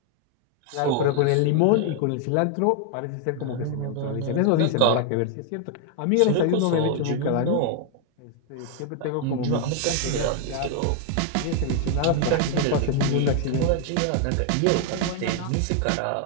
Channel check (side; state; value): both; different; correlation 0.00